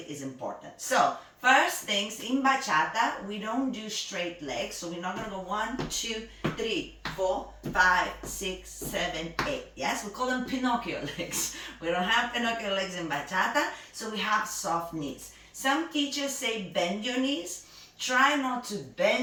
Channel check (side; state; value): both; identical; correlation 1.00